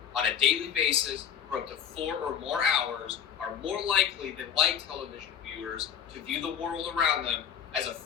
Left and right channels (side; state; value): right; quieter; 8.7 dB